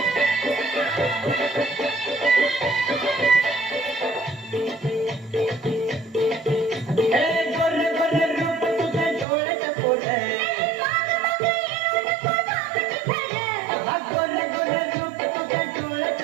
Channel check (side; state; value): left; drops out; at 9.2 s